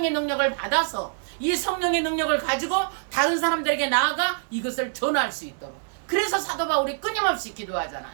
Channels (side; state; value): left; silent; digital silence